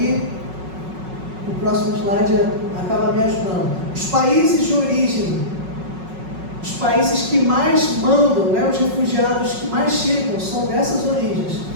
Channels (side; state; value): left; late; 5.4 ms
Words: o próximo slide acaba me ajudando. Os países de origem, os países que mais mandam, os refugiados que mais chegam são dessas origens,